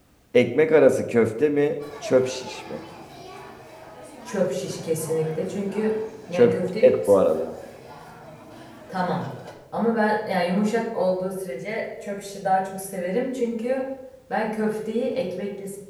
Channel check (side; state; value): both; identical; correlation 1.00